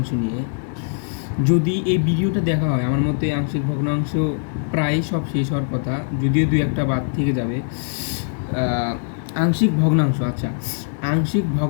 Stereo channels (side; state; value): right; silent; 65 dB below the other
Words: নিয়ে। যদি এই ভিডিওটা দেখা হয়, আমার মতে আংশিক ভগ্নাংশ প্রায় সব শেষ হওয়ার কথা, যদিও দুই একটা বাদ থেকে যাবে। আংশিক ভগ্নাংশ, আচ্ছা, আংশিক